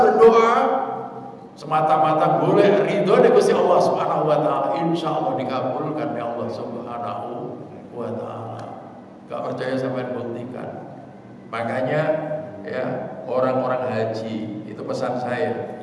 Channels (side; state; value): both; identical; correlation 1.00